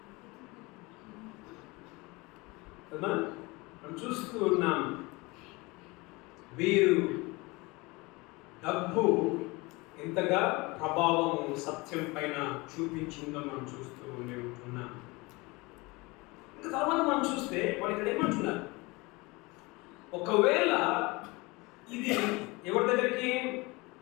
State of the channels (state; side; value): quieter; right; 24.3 dB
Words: కదా. మనం చూస్తూ ఉన్నాం, వీరు డబ్బు ఎంతగా ప్రభావము సత్యం పైన చూపించిందో మనం చూస్తూ ఉంటున్నాం. ఇంకా తర్వాత మనం చూస్తే వాళ్ళు ఇక్కడ ఏమంటున్నారు, ఒకవేళ ఇది ఎవరి దగ్గరికి